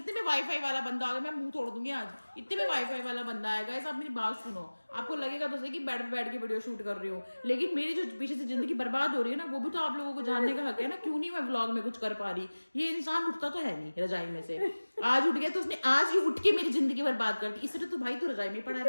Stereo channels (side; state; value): both; inverted; correlation -1.00